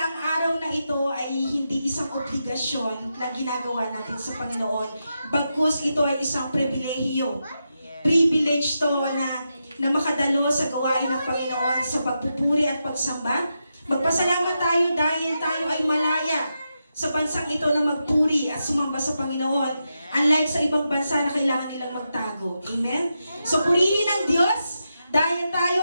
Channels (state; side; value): inverted; both; correlation -0.87